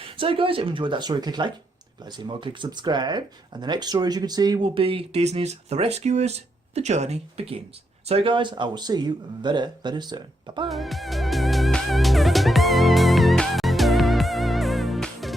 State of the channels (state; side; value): normal; both; correlation 0.80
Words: So guys, if you enjoyed that story, click like. If you'd like to see more, click subscribe. And the next story, as you can see, will be Disney's The Rescuers. The journey begins. So guys, I will see you very, very soon. Bye-bye.